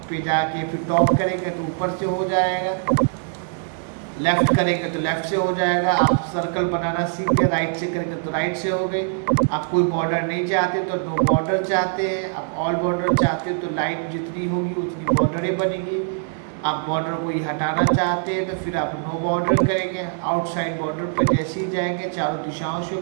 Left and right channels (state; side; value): silent; left; 57 dB below the other